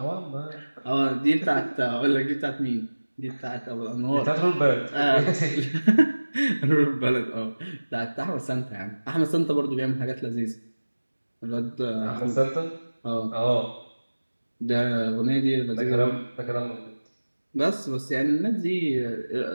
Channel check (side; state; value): both; inverted; correlation -1.00